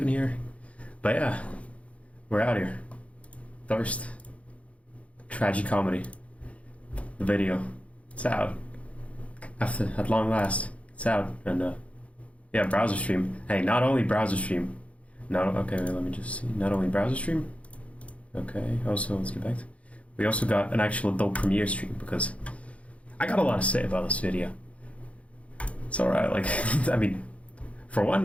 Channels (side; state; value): right; late; 0.064 ms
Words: here. But yeah, we're out here. Thirst. Tragicomedy. The video. It's out. At long last. It's out. And yeah, browser stream. Hey, not only browser stream. Okay, wait, let me just see. Not only browser stream. Okay, also, let's get back to... We also got an actual adult premiere stream because I got a lot to say about this video. It's alright, like, I mean, for one,